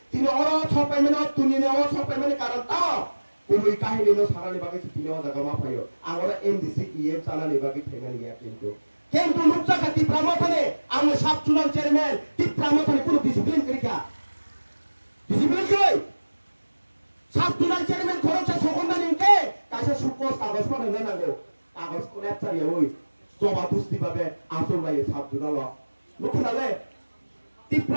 तिनि अरो छपाय मेनो तुनिने अरो छपाय मेने कारण ता कुबुय काहिनिनो सानानि बागै तिनि अ जागा मा फायो आं अरा एमडीसी इएम सानानि बागै थेनानि या কিন্তু নুকসাকা টিপ্রামথানে আমি সাবচুনাল চেয়ারম্যান টিপ্রামথানে কোনো ডিসিপ্লিন করিকা ডিসিপ্লিন কই সাবচুনাল চেয়ারম্যান খরচা সকন্না নিকে কাছে সুকস কাগজ পাঠানো নাগো কাগজ কোলে চারিয়া ওই জবা দুস্তি ভাবে আসল লাগে সাবচুনাল লুকুনালে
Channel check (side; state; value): both; inverted; correlation -1.00